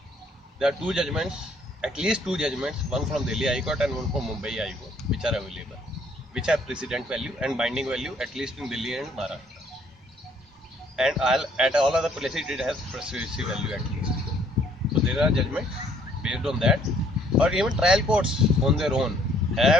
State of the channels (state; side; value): normal; both; correlation 0.63